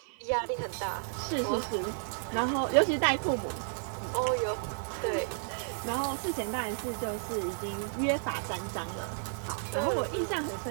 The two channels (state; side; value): silent; left; 56 dB below the other